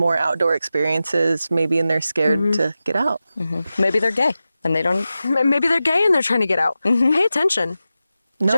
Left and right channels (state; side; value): inverted; both; correlation -0.93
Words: outdoor experiences, maybe and they're scared to get out? Maybe they're gay and they don't... Maybe they're gay and they're trying to get out. Pay attention.